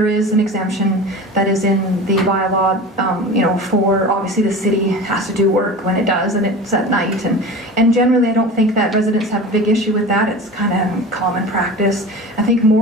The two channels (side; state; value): both; normal; correlation 0.33